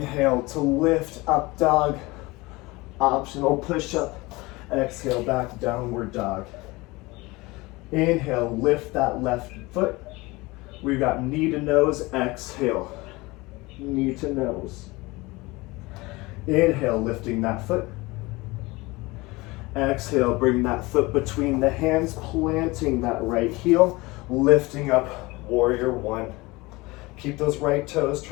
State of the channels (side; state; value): right; quieter; 22.6 dB